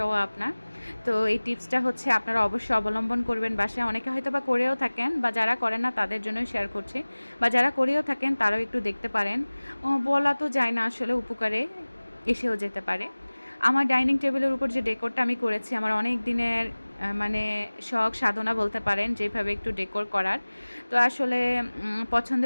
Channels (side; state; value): both; inverted; correlation -1.00